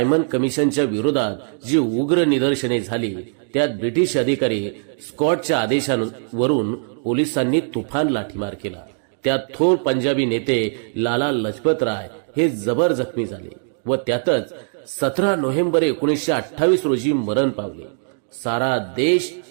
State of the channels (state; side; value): silent; left; 65 dB below the other